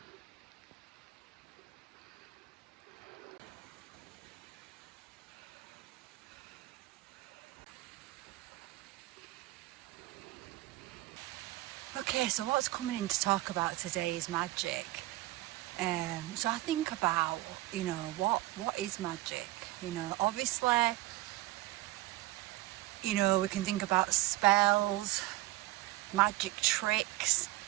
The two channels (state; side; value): quieter; left; 18.4 dB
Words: Okay, so what's coming in to talk about today is magic. So I think about, what is magic? Obviously, we can think about spells, magic tricks,